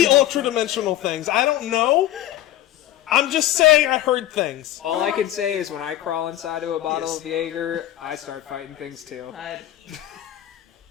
fucking- ultra-dimensional things. I don't know. I'm just saying I heard things. All I can say is when I crawl inside of a bottle of Jaeger, I start fighting things too.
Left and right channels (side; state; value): right; quieter; 13.3 dB